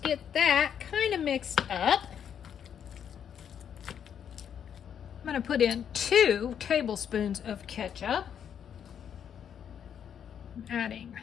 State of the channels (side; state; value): right; quieter; 8.5 dB